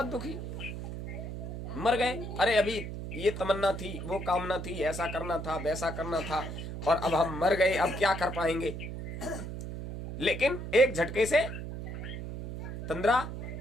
दुखी, मर गए। अरे अभी ये तमन्ना थी, वो कामना थी, ऐसा करना था, वैसा करना था, और अब हम मर गए, अब क्या कर पाएंगे। लेकिन एक झटके से तंद्रा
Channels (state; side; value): noise; right; hum, 7 dB below the sound